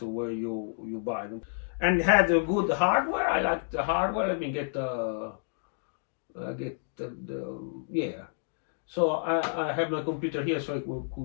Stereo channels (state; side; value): silent; right; digital silence